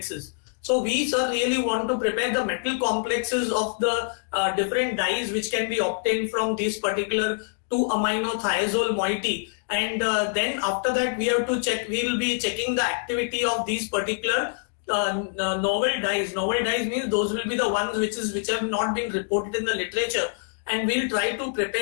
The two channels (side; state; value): right; silent; digital silence